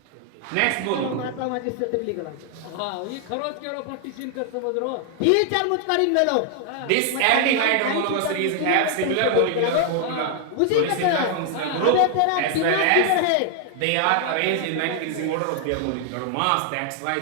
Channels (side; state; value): both; different; correlation 0.00